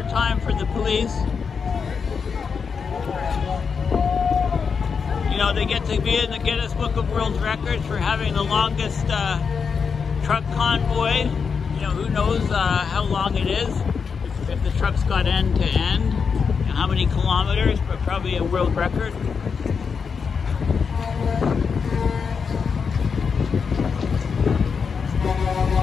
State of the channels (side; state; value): right; quieter; 5.8 dB